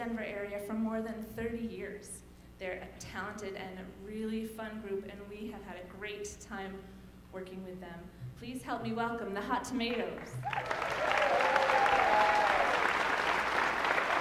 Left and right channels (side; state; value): both; identical; correlation 1.00